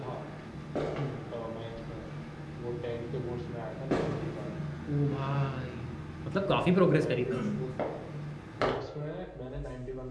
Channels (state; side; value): identical; both; correlation 1.00